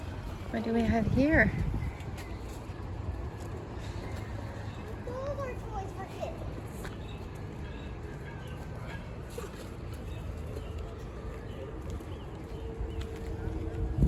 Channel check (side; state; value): both; identical; correlation 1.00